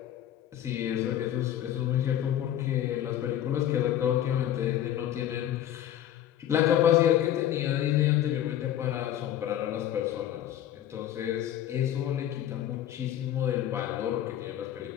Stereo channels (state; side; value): quieter; right; 11.5 dB